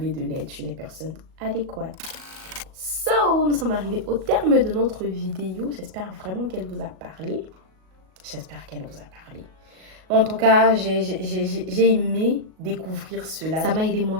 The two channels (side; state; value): left; late; 37 ms